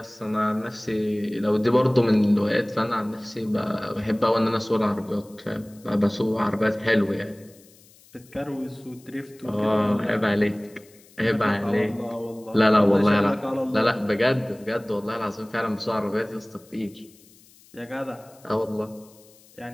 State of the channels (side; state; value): left; noise; hiss, 27 dB below the sound